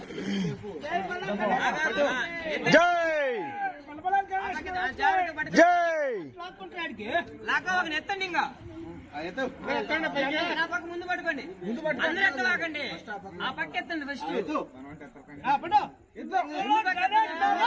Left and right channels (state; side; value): identical; both; correlation 1.00